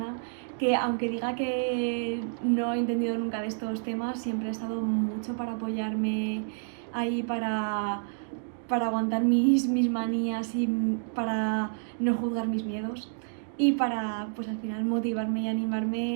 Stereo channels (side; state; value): left; silent; digital silence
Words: que, aunque diga que no he entendido nunca de estos temas, siempre ha estado mucho para apoyarme ahí, para aguantar mis manías y para no juzgar mis miedos, y para pues al final motivarme y